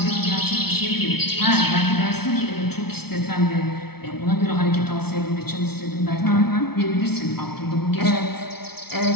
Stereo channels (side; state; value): right; late; 0.95 ms